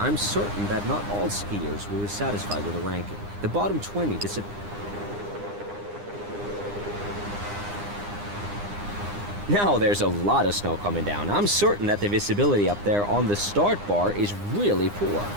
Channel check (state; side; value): late; left; 9.8 ms